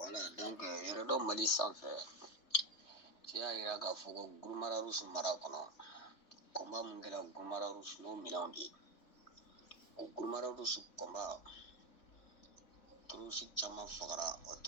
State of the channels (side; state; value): right; late; 3.2 ms